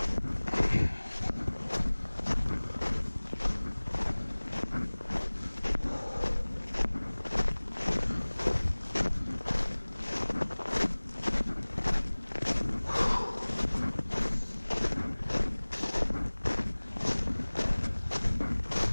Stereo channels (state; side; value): inverted; both; correlation -1.00